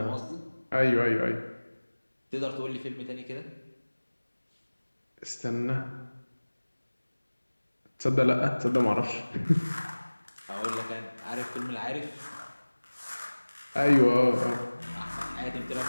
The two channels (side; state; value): both; inverted; correlation -1.00